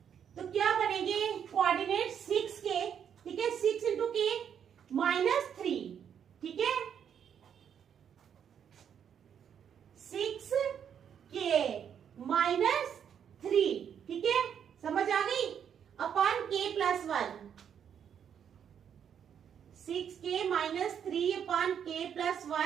तो क्या बनेंगे कोऑर्डिनेट 6K, ठीक है, 6 इंटू K -3, ठीक है, 6K -3, ठीक है, समझ आ गई, upon K + 1, 6K -3 upon K +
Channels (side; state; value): left; quieter; 8.3 dB